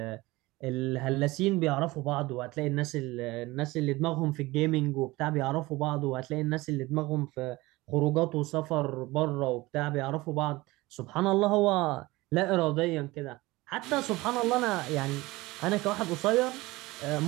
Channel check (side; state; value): left; quieter; 20.6 dB